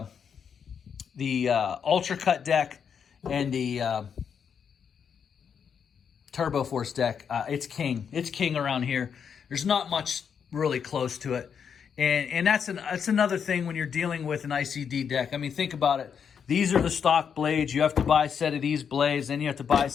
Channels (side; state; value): right; quieter; 7.2 dB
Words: Ultra Cut deck and the Turbo Force deck, it's king. It's king around here. There's not much really close to it. And that's another thing when you're dealing with an ICD deck. I mean, think about it. These are the stock blades. You have to buy a set of these blades, then you have to buy a